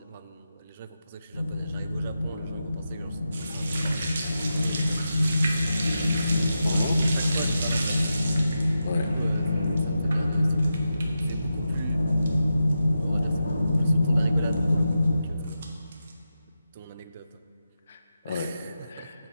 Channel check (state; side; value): inverted; both; correlation -0.89